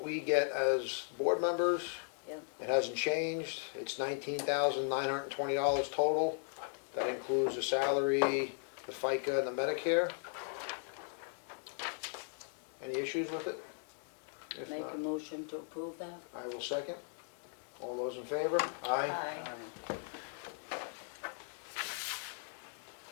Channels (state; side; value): silent; right; 53 dB below the other